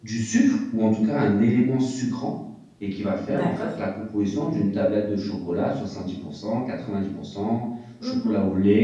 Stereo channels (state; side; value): identical; both; correlation 1.00